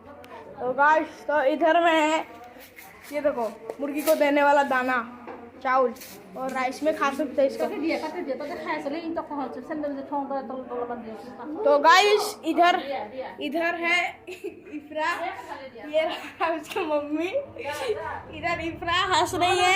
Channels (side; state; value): both; identical; correlation 1.00